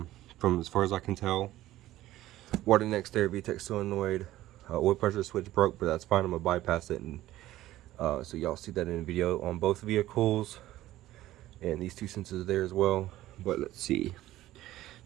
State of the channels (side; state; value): left; quieter; 15.1 dB